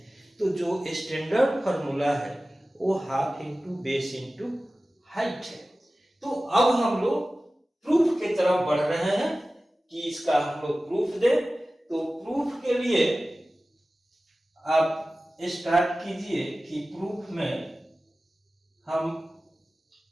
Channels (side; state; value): both; normal; correlation 0.96